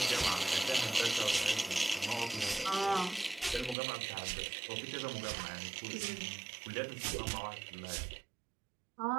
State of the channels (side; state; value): left; drops out; at 3.8 s